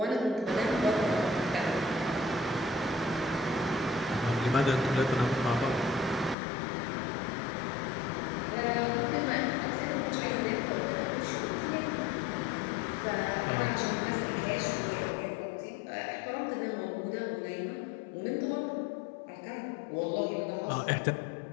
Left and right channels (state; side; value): drops out; right; at 6.4 s